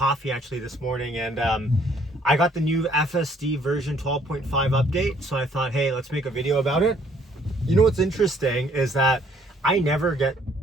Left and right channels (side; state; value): both; normal; correlation 0.63